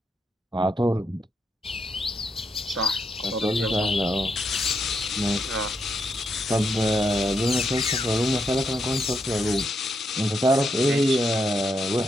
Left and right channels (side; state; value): both; normal; correlation 0.80